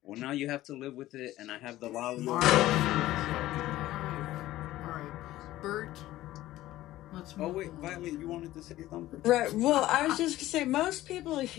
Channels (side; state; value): right; quieter; 15.4 dB